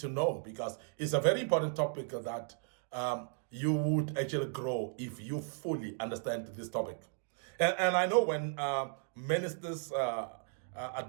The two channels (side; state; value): left; silent; 54 dB below the other